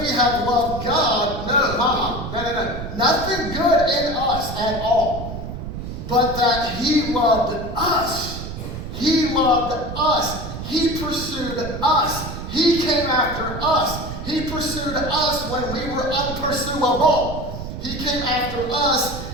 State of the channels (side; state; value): right; noise; rumble, 8 dB below the sound